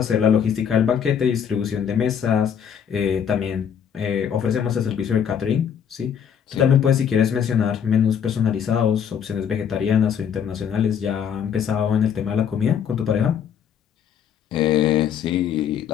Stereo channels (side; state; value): right; quieter; 8.1 dB